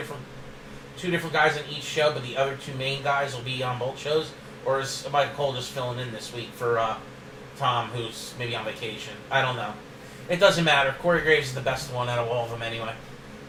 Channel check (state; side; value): identical; both; correlation 1.00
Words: guys on each show, but the other two main guys will be on both shows? Or is Michael Cole just filling in this week for Tom, who's maybe on vacation? I don't know. It doesn't matter. Corey Graves is the best one out of all of them anyway.